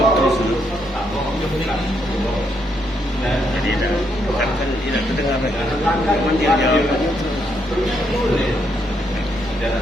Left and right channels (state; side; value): normal; both; correlation 0.76